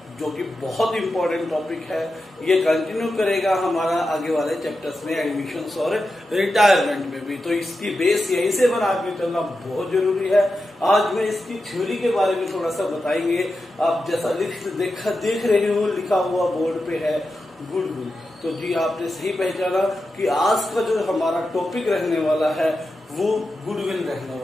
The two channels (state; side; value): normal; both; correlation 0.90